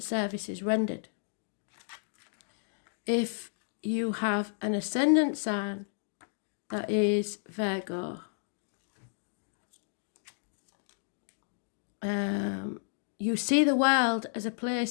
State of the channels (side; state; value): right; silent; digital silence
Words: rendered. If you have an ascendant sign that is Virgo, you see the world as a